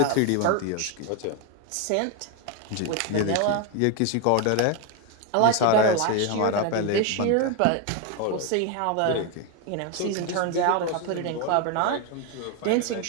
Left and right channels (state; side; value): different; both; correlation 0.01